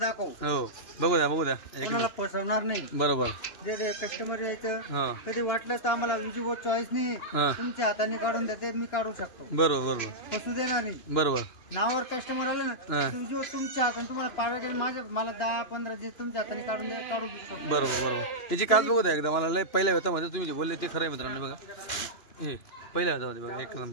हो बघू द्या एक कोणाला फसवणार नाही. बरोबर जे कस्टमर यायचं हा कधी वाटलं तर आम्हाला विजीबो चॉईस नाही हा तुमच्या हाताने काढून देते मी काढू शकतो. बरोबर फसू देणार नाही. बरोबर नावावर कस्टमर आलं हा. ना विजीबो तुमच्या हाताने तुम्हाला पाडवा गेलं माझ्या मला 10-15 जे तुमच्या हाताने काढू शकतो. बरोबर त्याची काच बघू द्या एकदा मला लय पहिल्या वेतामध्ये तुम्ही जे बोलले ते खरं आहे मित्रांनो बघा हे पहिल्या वेतामध्ये बघा एक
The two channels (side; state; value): right; late; 2.9 ms